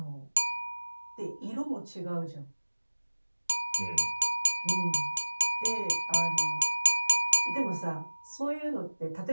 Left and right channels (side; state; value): both; inverted; correlation -1.00